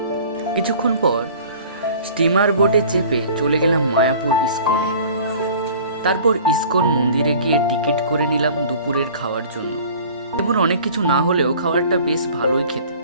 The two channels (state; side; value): inverted; both; correlation -0.47